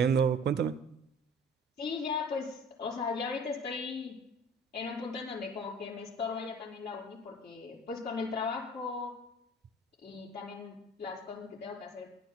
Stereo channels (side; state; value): both; normal; correlation 0.46